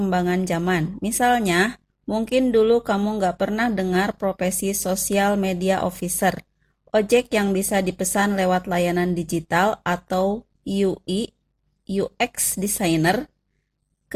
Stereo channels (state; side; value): identical; both; correlation 1.00